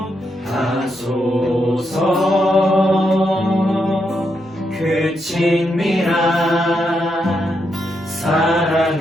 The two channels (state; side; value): normal; both; correlation 0.81